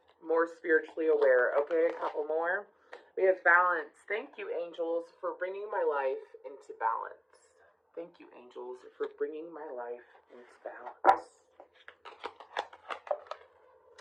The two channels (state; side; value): identical; both; correlation 1.00